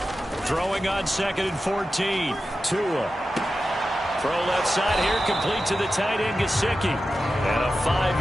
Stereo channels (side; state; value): both; normal; correlation 0.92